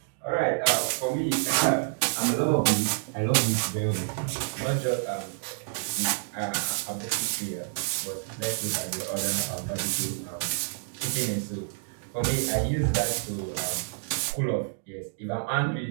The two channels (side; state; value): left; silent; digital silence